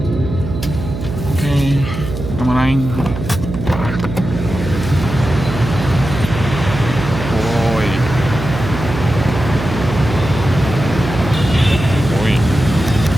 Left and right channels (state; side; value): noise; right; hum, 7 dB below the sound